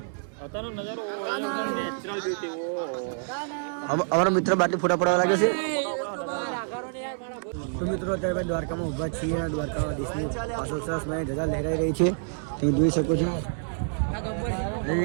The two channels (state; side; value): silent; left; 60 dB below the other